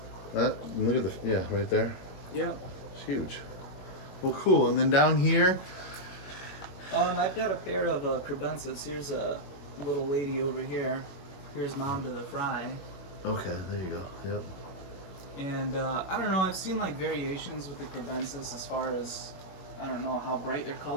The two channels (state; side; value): late; right; 21 ms